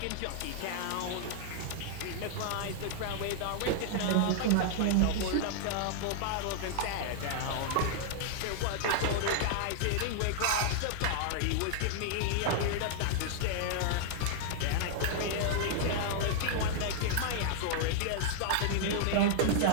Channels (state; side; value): different; both; correlation -0.01